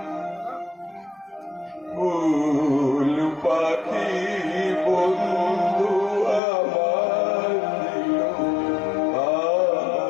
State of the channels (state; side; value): drops out; right; at 6.4 s